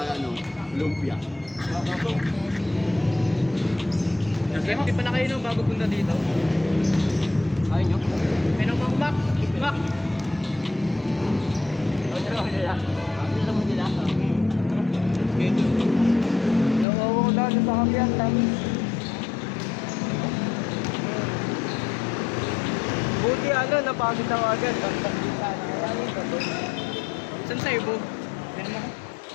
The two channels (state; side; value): drops out; right; at 16.9 s